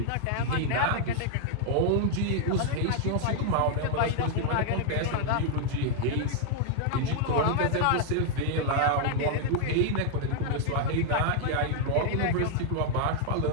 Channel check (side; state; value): both; different; correlation -0.01